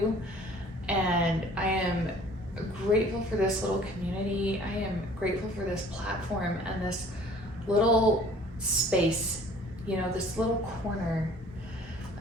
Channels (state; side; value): normal; both; correlation 0.52